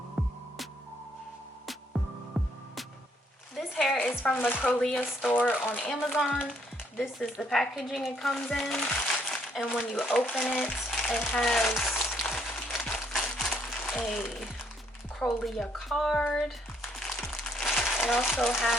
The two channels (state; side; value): normal; both; correlation 0.69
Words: This hair is from the Crochet store on Amazon. This is the packaging it comes in, and when you open it, it has a Crochet card. It also